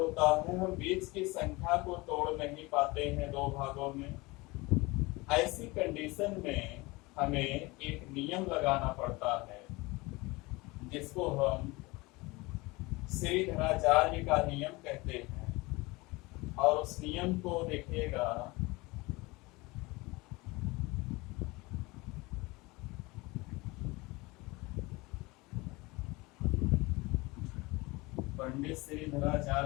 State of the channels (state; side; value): quieter; right; 23.3 dB